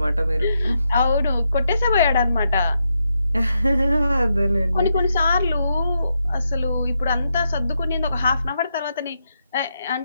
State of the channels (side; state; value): both; inverted; correlation -0.82